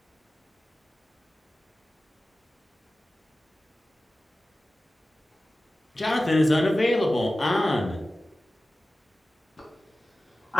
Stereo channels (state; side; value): normal; both; correlation 0.95